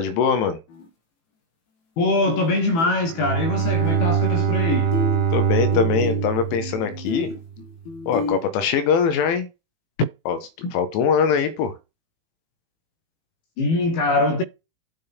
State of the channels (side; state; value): right; late; 18 ms